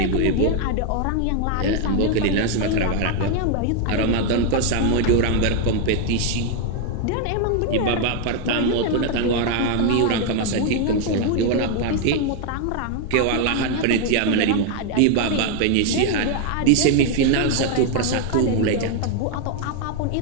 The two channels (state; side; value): different; both; correlation 0.00